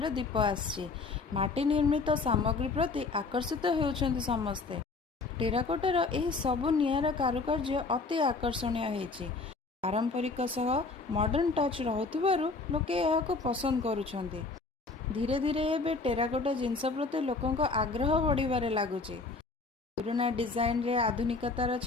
रो दीप आसी निर्मित सामग्री प्रति आकर्षित होउछन्ति समस्ते। टेराकोटार एही सबु नियारा कारुकार्य अति आकर्षणीय होइछि। पारंपरिक सह मॉडर्न टच रहुथिबारु लोके एहाको पसंद करूछन्ति। धीरे धीरे एबे टेराकोटा जिनस प्रति लोकंक आग्रह बढ़िबारे लागुछि। पुराना डिजाइन रे आधुनिकतार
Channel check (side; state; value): right; quieter; 4.0 dB